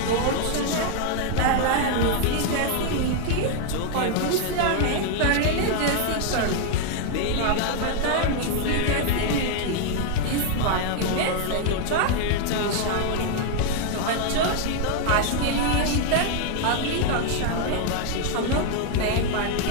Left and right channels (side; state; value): both; different; correlation 0.00